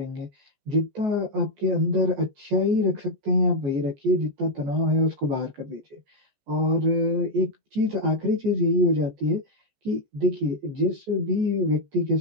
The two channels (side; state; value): left; late; 14 ms